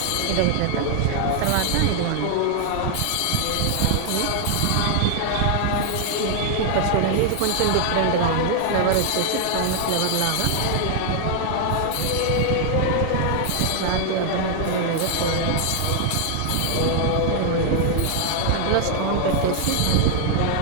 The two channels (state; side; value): different; both; correlation 0.00